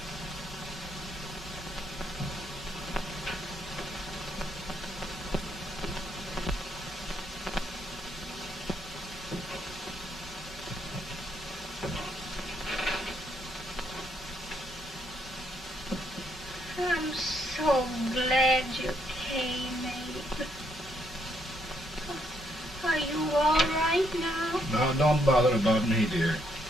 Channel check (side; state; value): both; normal; correlation 0.74